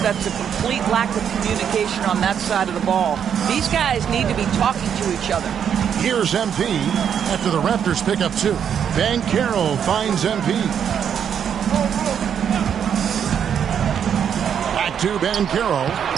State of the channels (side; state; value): left; quieter; 8.2 dB